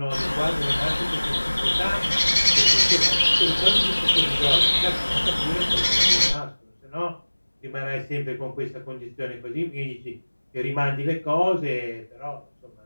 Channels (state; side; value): inverted; both; correlation -1.00